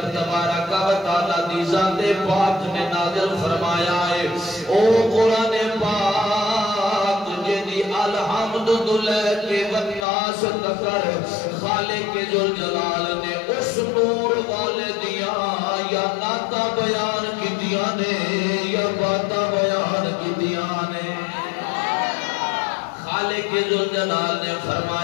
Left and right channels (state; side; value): drops out; right; at 10.1 s